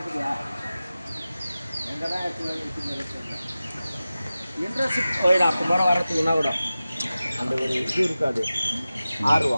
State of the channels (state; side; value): inverted; both; correlation -0.95